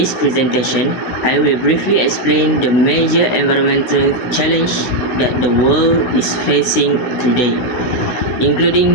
presentation, I will briefly explain the major environmental challenge that the world is facing today,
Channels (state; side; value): late; right; 16 ms